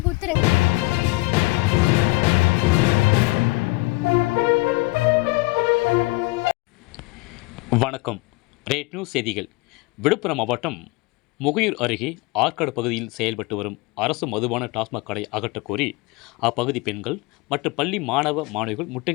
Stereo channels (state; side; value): quieter; right; 23.6 dB